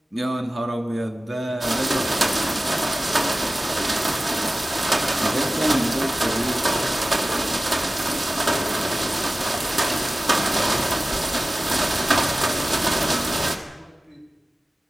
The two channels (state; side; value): normal; both; correlation 0.96